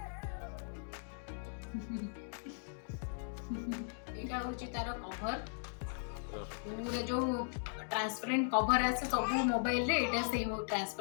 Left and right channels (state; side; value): silent; right; digital silence